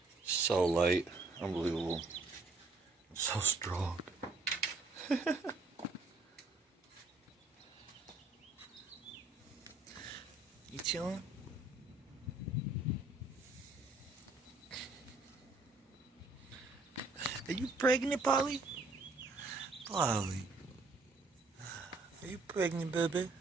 So light, unbelievable. So strong. You chilling? Are you pregnant, Polly? Polly. Are you pregnant, baby?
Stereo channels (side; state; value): left; quieter; 3.4 dB